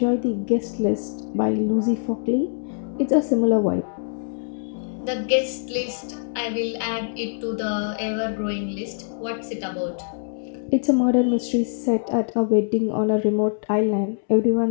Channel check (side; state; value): right; silent; 63 dB below the other